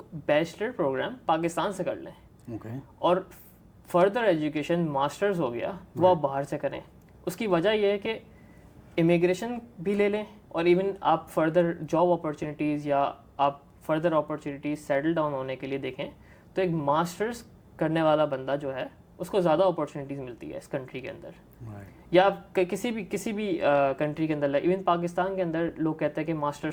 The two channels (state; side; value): identical; both; correlation 1.00